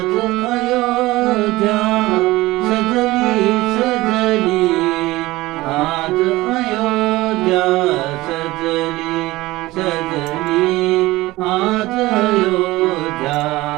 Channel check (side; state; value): left; quieter; 19.0 dB